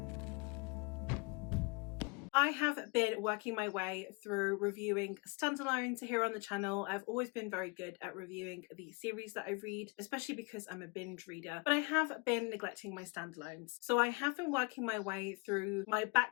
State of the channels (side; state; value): right; quieter; 29.9 dB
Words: I have been working my way through reviewing standalones here on the channel. I've always been very good at reviewing the series that I read, especially because I'm a binge reader, but I have been neglecting my standalones. So I have been working my way through my